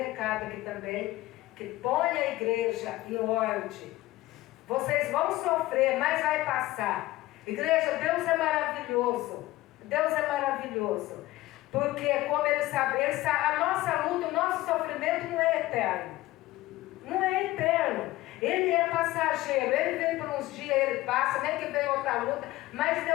aqui também, que põe a igreja em ordem. Vocês vão sofrer, mas vai passar. Igreja, Deus é maravilhoso. Deus é maravilhoso. Porque, como Ele sabe, a nossa luta, o nosso sofrimento não é eterno. Não é eterno. Ele é passageiro. Ele vem por uns dias, ele passa, nem que vem outra luta. Mas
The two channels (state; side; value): quieter; right; 17.5 dB